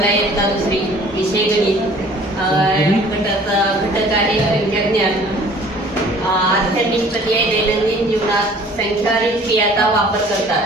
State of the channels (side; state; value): both; normal; correlation 0.52